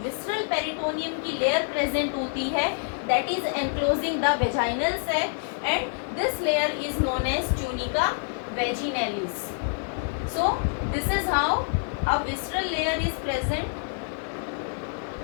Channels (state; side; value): silent; right; 60 dB below the other